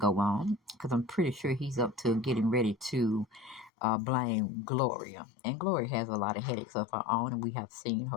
on, because I'm pretty sure he's up to getting ready to blame Gloria, and Gloria has a lot of headaches of her own, and we have seen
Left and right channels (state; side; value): drops out; right; at 3.7 s